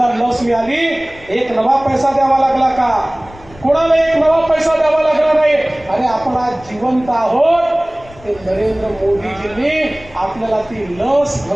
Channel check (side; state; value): left; noise; rumble, 22 dB below the sound